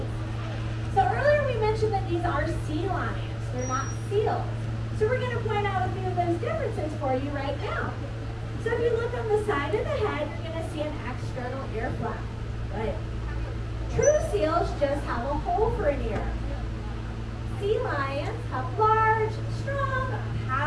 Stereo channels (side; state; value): both; identical; correlation 1.00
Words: So earlier we mentioned that these are sea lions. They're not seals. So we're going to point out a few of those differences for you right now. So if you look on the side of the head, you're going to see an external ear flap. Right? True seals just have a hole for an ear. Sea lions have large, strong,